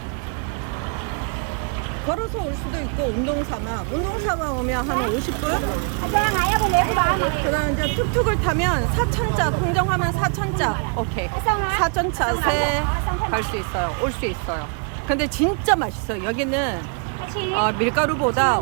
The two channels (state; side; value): quieter; left; 38.9 dB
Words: 걸어서 올 수도 있고 운동삼아 오면 한 50분? 그다음 이제 툭툭을 타면 4,000짜, 통정하면 4,000짜. 오케이. 4,000짜세 갈 수 있어요. 올 수 있어요. 근데 진짜 맛있어요. 여기는 밀가루보다